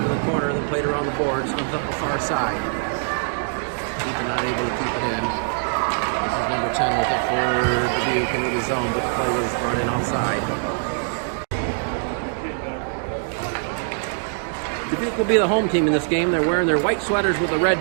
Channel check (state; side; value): silent; left; digital silence